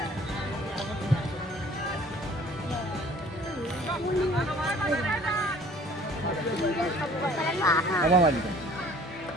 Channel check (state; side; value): normal; both; correlation 0.52